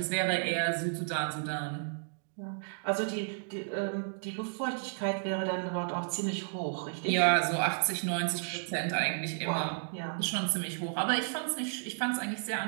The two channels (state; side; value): silent; left; digital silence